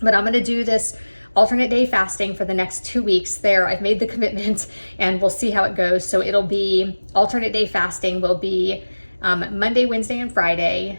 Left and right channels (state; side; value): inverted; both; correlation -1.00